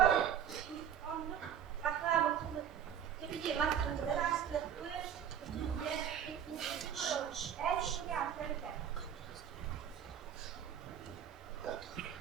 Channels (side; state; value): left; quieter; 9.0 dB